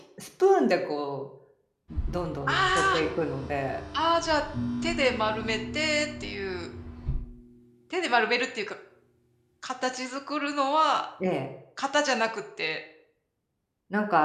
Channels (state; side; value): identical; both; correlation 1.00